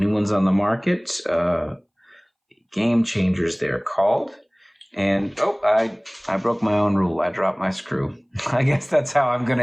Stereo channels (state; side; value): identical; both; correlation 1.00